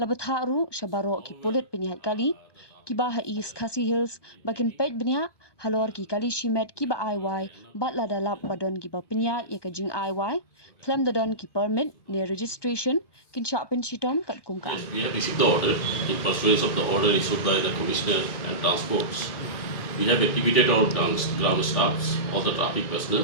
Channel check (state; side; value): late; right; 1.2 ms